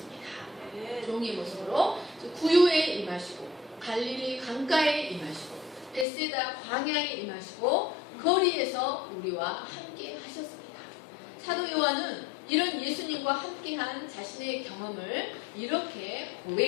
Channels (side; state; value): right; drops out; at 6.1 s